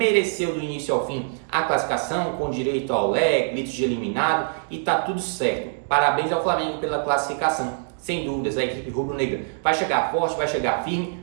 do início ao fim a classificação, com direito ao leg, gritos de eliminado, e tá tudo certo. Parabéns ao Flamengo pela classificação. Sem dúvidas, a equipe rubro-negra vai chegar forte, vai chegar firme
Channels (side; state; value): left; silent; digital silence